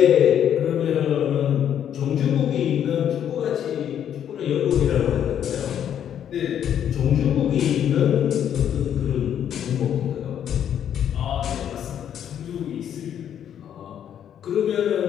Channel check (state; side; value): quieter; right; 9.6 dB